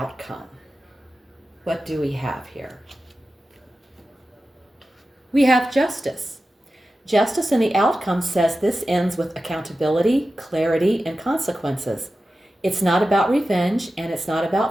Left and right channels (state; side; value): normal; both; correlation 0.93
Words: What do we have here? We have justice. Justice in the outcome says this ends with accountability, clarity, and consequences. It's not about revenge, and it's not